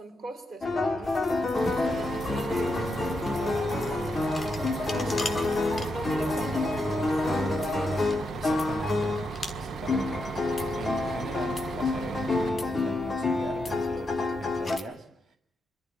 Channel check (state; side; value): normal; both; correlation 0.84